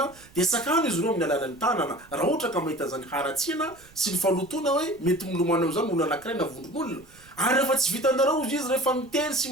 de sakano izy ireo amin'ny alalan'ny tanana raha ohatra ka mahita zany haratsiana sy ny falotona hoe mety milomana am'izany olona anankiray na vondron'olona ary rehefa tsy vitanareo izy rehefa miteny sy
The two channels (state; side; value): noise; right; rumble, 26 dB below the sound